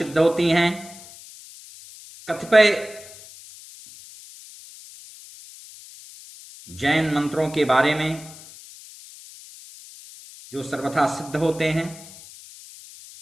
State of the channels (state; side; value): noise; left; hiss, 18 dB below the sound